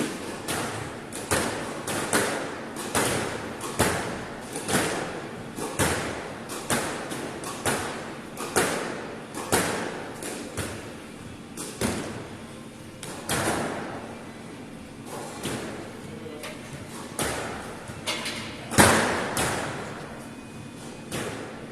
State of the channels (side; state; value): both; identical; correlation 1.00